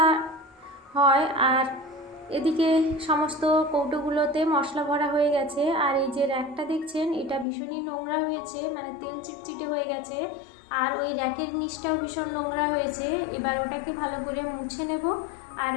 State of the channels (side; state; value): right; drops out; at 7.5 s